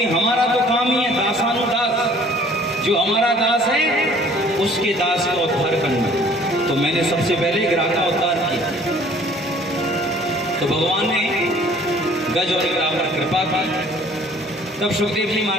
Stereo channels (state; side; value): normal; both; correlation 0.53